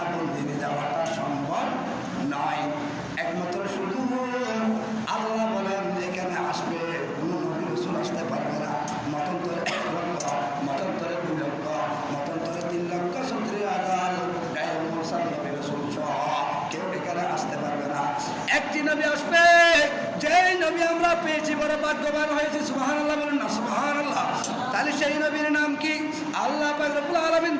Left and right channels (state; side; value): identical; both; correlation 1.00